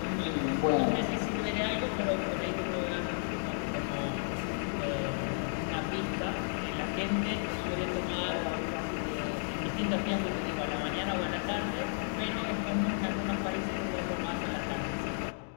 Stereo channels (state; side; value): silent; right; digital silence